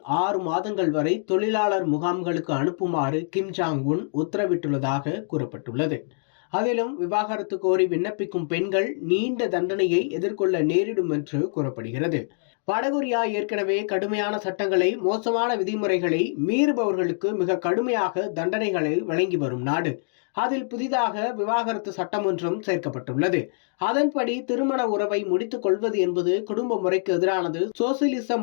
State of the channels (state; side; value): silent; right; digital silence